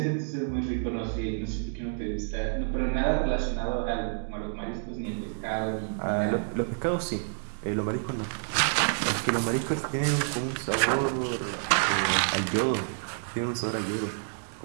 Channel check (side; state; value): left; silent; digital silence